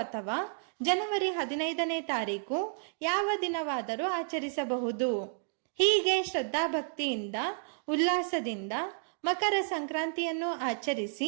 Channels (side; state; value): left; silent; digital silence